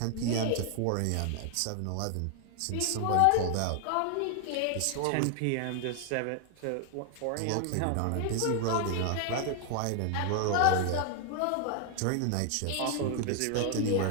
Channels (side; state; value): both; different; correlation 0.00